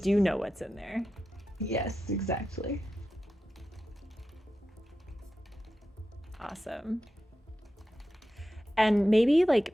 know what's in there. Yes, exactly. Awesome. And maybe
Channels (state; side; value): normal; both; correlation 0.91